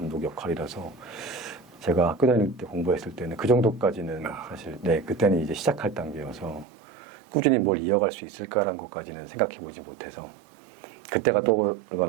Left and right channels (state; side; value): drops out; left; at 6.7 s